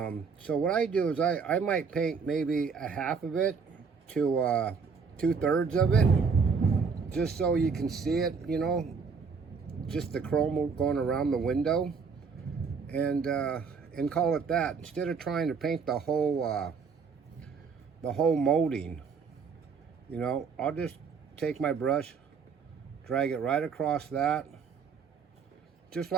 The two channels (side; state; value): left; quieter; 5.6 dB